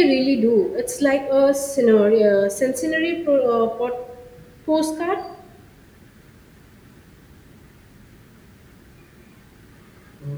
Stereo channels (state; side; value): identical; both; correlation 1.00